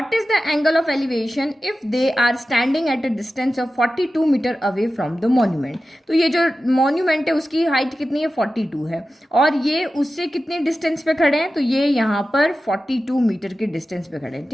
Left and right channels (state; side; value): normal; both; correlation 0.94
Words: is the angle of elevation if they are standing at a distance of 42 metre away from the monument? तो ये जो monument है उसकी हाइट कितनी है, 42 है, और ये उससे कितने डिस्टेंस पे खड़े हैं, तो ये यहाँ पर 42 मीटर के डिस्टेंस पे खड़े हैं.